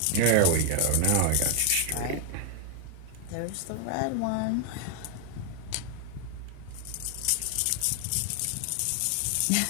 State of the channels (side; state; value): both; different; correlation 0.01